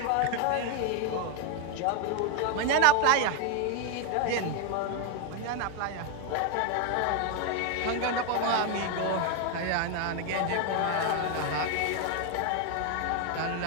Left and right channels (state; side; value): different; both; correlation 0.02